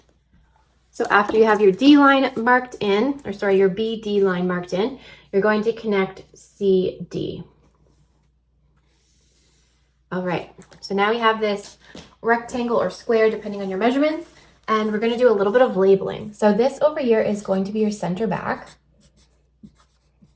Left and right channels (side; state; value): both; identical; correlation 1.00